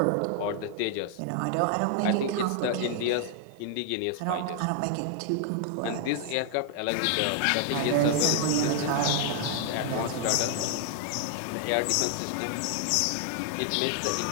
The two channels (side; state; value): both; different; correlation 0.00